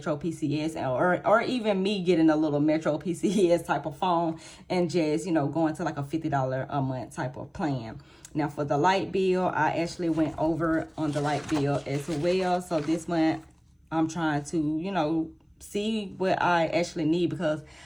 PCS, or even me getting a little Metro PCS type of phone and just, you know, going to like a $50 a month type of plan. Now for the light bill, I actually went over on the light bill as well. So this month I'm trying to, you know, see what I actually need, because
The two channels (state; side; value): identical; both; correlation 1.00